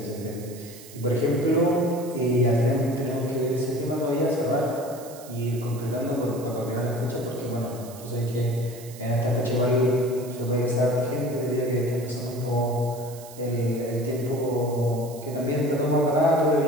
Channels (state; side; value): noise; right; hiss, 18 dB below the sound